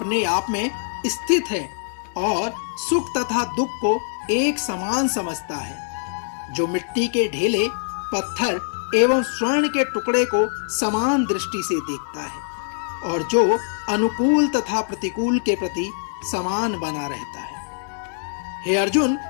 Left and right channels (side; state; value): right; silent; digital silence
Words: आप में स्थित है और सुख तथा दुख को एक समान समझता है, जो मिट्टी के ढेले, पत्थर एवं स्वर्ण के टुकड़े को समान दृष्टि से देखता है और जो अनुकूल तथा प्रतिकूल के प्रति समान बना रहता है। हे अर्जुन,